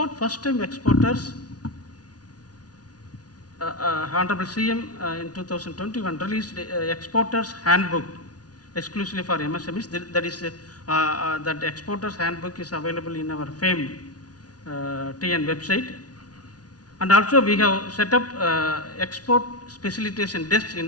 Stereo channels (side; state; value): right; late; 0.69 ms